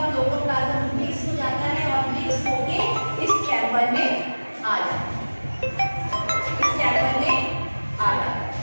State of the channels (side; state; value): both; inverted; correlation -1.00